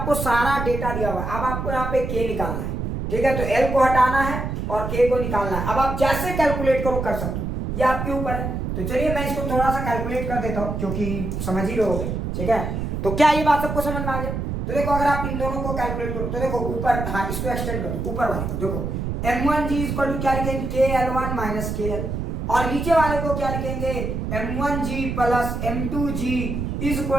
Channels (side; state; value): right; noise; rumble, 3 dB below the sound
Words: सारा डेटा दिया हुआ है, अब आपको यहाँ पे K निकालना है, ठीक है। तो L को हटाना है और K को निकालना है। अब आप जैसे कैलकुलेट करो कर सकते हो, ये आपके ऊपर है। तो चलिए मैं इसको थोड़ा सा कैलकुलेट कर देता हूँ क्योंकि समझ ही रहोगे, ठीक है। तो क्या ये बात सबको समझ में आ गया? तो देखो अगर आप इन दोनों को कैलकुलेट करो तो देखो ऊपर, हाँ इसको एक्सटेंड कर दो ऊपर वाले को। देखो M1G इक्वल टू क्या लिखेंगे? KL1 minus KL। और नीचे वाले को क्या लिखेंगे? M1G plus M2G is